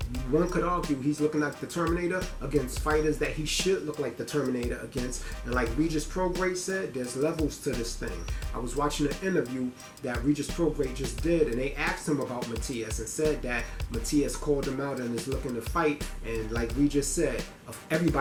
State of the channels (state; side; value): identical; both; correlation 1.00